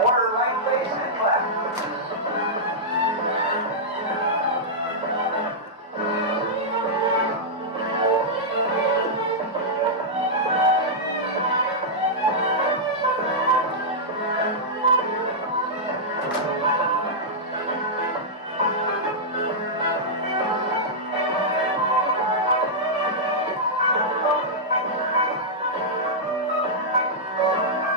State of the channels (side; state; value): both; normal; correlation -0.09